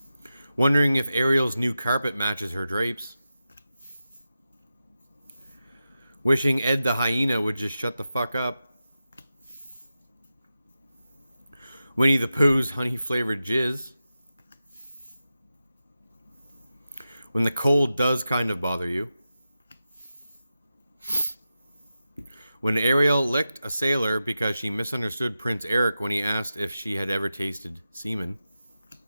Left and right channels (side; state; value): both; inverted; correlation -0.92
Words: Wondering if Ariel's new carpet matches her drapes. Wishing Ed the hyena would just shut the fuck up. Winnie the Pooh's honey-flavored jizz. When the cold does kind of bother you. When Ariel licked a sailor because she misunderstood Prince Eric when he asked if she had ever tasted semen.